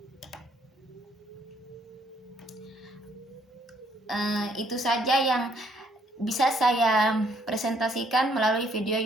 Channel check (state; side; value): normal; both; correlation 0.67